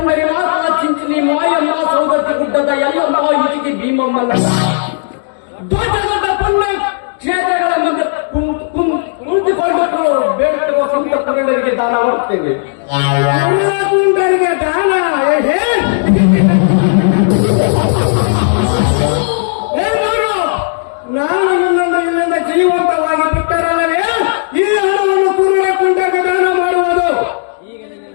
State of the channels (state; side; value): silent; right; digital silence